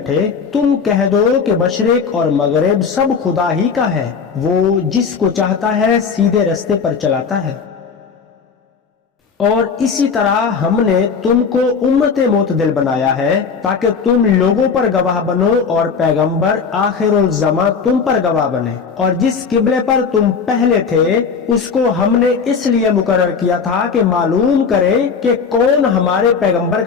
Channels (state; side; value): quieter; right; 5.8 dB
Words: تم کہہ دو کہ مشرق اور مغرب سب خدا ہی کا ہے، وہ جس کو چاہتا ہے سیدھے رستے پر چلاتا ہے۔ اور اسی طرح ہم نے تم کو امت معتدل بنایا ہے تاکہ تم لوگوں پر گواہ بنو اور پیغمبر آخر الزماں تم پر گواہ بنے۔ اور جس قبلے پر تم پہلے تھے اس کو ہم نے اس لیے مقرر کیا تھا کہ معلوم کریں کہ کون ہمارے پیغمبر